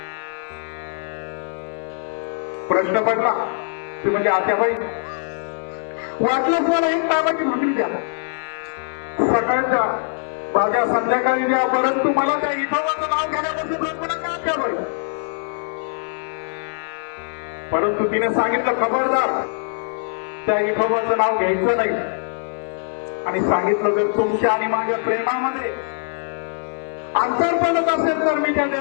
प्रश्न पडला. ती म्हणजे आत्याबाई, वाटलंच मला एक नावाची भाकरी द्या, सकाळच्या माझ्या संध्याकाळी द्या, परंतु मला त्या विठोबाचं नाव घेण्यापासून मला ठेवलंय. परंतु तिने सांगितलं, खबरदार त्या विठोबाचं नाव घ्यायचं नाही. आणि सांगितलं, जर तुमच्या आणि माझ्या प्रेमामध्ये अंतर पडत असेल तर मी त्या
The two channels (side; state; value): right; silent; 64 dB below the other